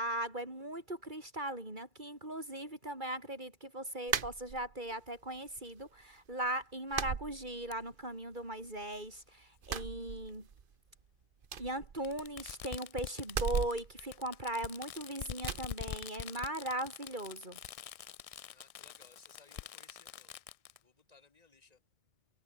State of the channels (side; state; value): left; late; 2.5 ms